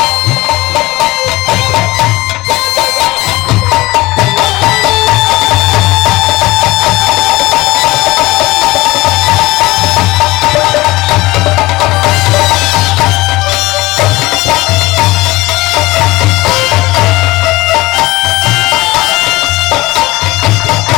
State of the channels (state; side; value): quieter; right; 20.0 dB